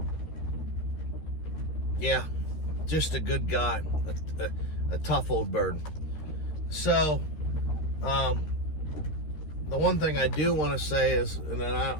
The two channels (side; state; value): right; late; 13 ms